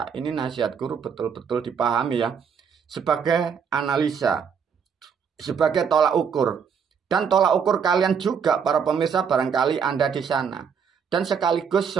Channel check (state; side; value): quieter; left; 6.8 dB